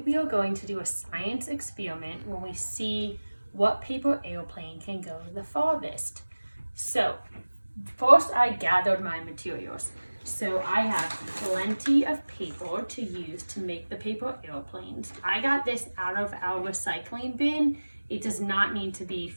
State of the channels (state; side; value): inverted; both; correlation -1.00